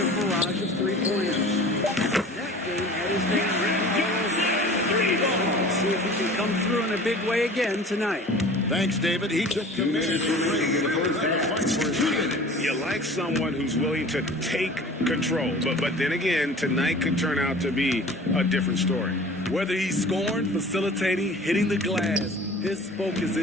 barrage of 3-pointers. That game had his name written all over it. Let's see if he can come through in a big way again tonight. Thanks, David. He took command of the fight for his team. You like someone who's willing to take control. But then again, tonight could turn out to be a different story. Whether he's scoring, facilitating, hitting the glass, his focus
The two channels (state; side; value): normal; both; correlation 0.43